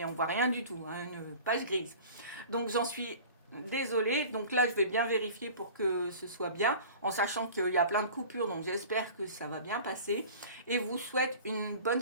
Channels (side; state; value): both; inverted; correlation -0.42